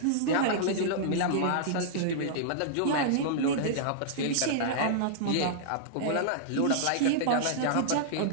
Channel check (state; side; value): different; both; correlation -0.02